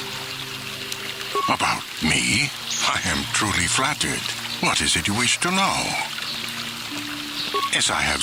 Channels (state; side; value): identical; both; correlation 1.00